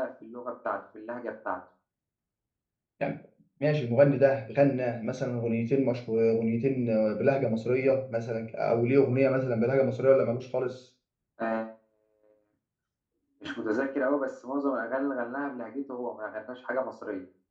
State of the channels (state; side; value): identical; both; correlation 1.00